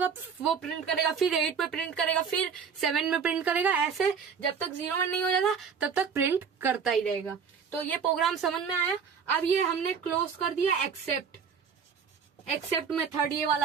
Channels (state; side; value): quieter; left; 6.5 dB